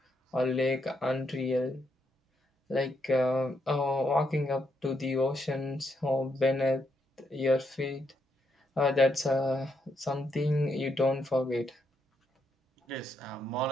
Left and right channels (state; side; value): normal; both; correlation 0.78